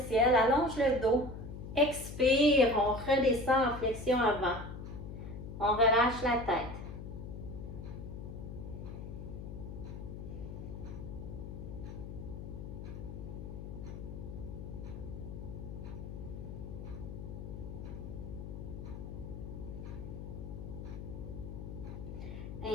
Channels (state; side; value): noise; left; hum, 8 dB below the sound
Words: ciel, allonge le dos. Expire, on redescend en flexion avant. On relâche la tête.